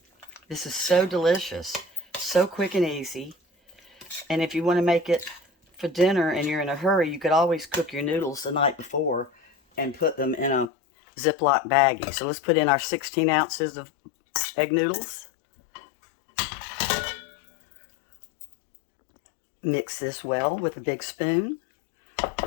This is so delicious, so quick and easy. And if you want to make it for dinner and you're in a hurry, you could always cook your noodles the night before and put them in a Ziploc baggie. So let's put in our 16 ounces of egg noodles. Mix this well with a big spoon.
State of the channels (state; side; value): drops out; right; at 10.7 s